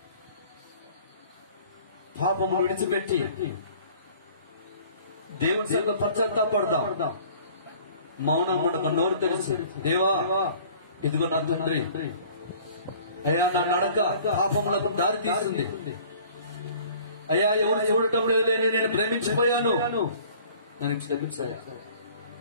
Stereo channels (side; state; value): both; inverted; correlation -0.50